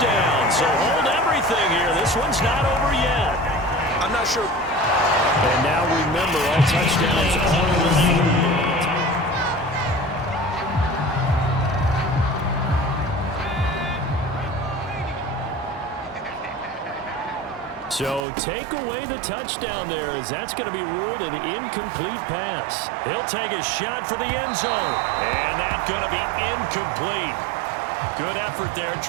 So hold everything here. This one's not over yet. I'm not sure. And now remember, all touchdowns are reviewed. So take away the touchdown there, as that's going to be ruled an incomplete pass. He'll take a shot for the end zone, and that's going to be incomplete. Good effort there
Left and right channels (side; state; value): left; drops out; at 18.2 s